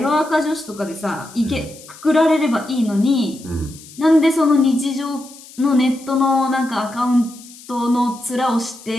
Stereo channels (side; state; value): left; noise; hiss, 20 dB below the sound